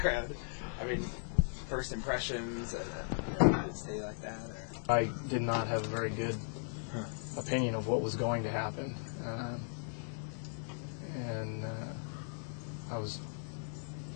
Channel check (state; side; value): silent; right; digital silence